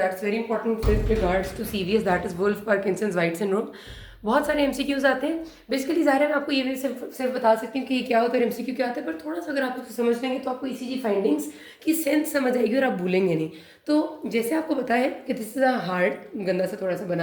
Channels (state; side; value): identical; both; correlation 1.00